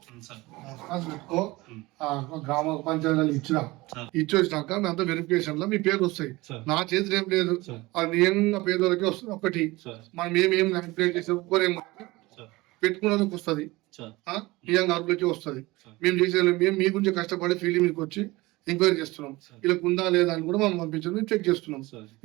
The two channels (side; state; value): left; quieter; 21.1 dB